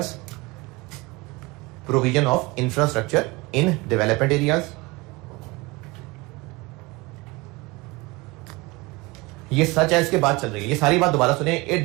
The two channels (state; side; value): quieter; left; 23.9 dB